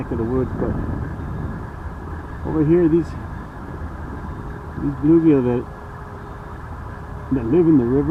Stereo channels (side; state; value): both; identical; correlation 1.00